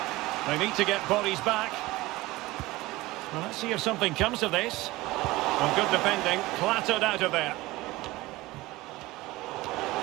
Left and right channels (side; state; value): left; quieter; 19.5 dB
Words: They need to get bodies back. Well, let's see if something comes of this. Well, good defending, clattered out of there.